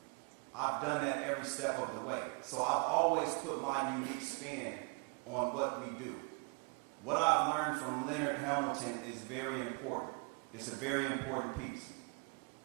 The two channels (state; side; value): quieter; left; 35.3 dB